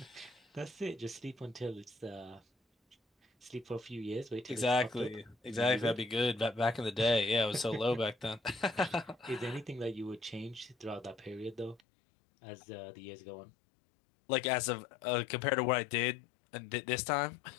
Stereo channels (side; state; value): right; drops out; at 11.8 s